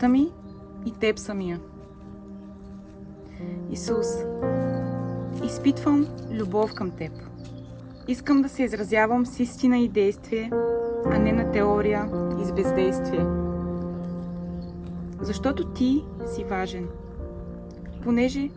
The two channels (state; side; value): identical; both; correlation 1.00